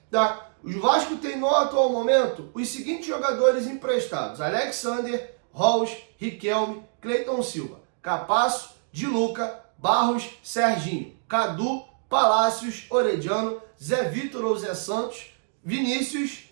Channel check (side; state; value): left; silent; digital silence